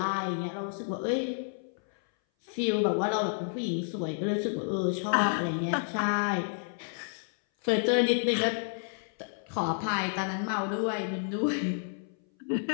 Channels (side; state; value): right; silent; 58 dB below the other